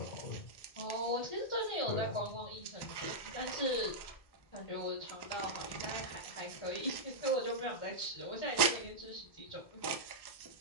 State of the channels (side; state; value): right; late; 1.1 ms